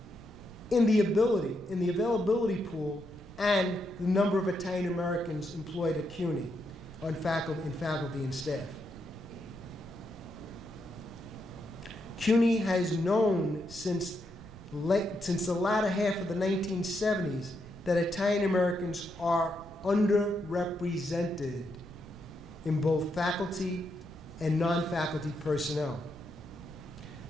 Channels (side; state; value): right; noise; rumble, 18 dB below the sound